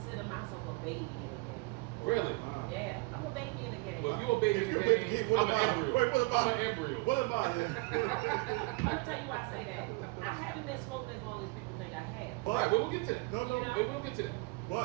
myself a baby in the game. Really? Yeah, I'm a baby in the game. Well, if you're a baby in the game, I'm an embryo. Wait, what about I'm an embryo. What am I? I'm gonna tell you why I say that. I haven't been smoking as long as people think I have. Right, well, we'll get to that. No, We'll get to that.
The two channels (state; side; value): quieter; left; 25.1 dB